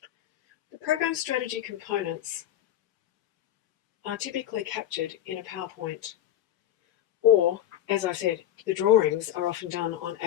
The program strategy components are typically captured in a PowerPoint, or, as I said, the drawings are often done on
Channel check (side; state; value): right; quieter; 11.8 dB